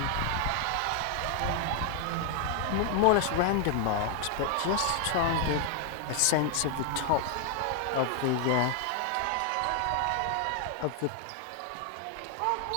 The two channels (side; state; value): both; different; correlation 0.00